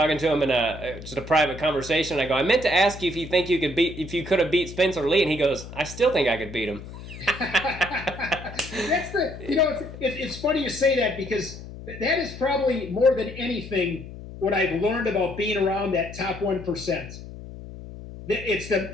to him in just a private conversation. I go, I meant to ask you if you think if you could have beat Spencer Lee, and he goes, I still think I could beat him. It's funny you say that, because that is probably more than anything what I've learned about being around that top 1%. It's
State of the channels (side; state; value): left; noise; hum, 13 dB below the sound